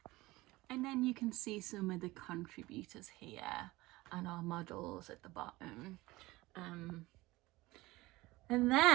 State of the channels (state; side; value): quieter; left; 19.9 dB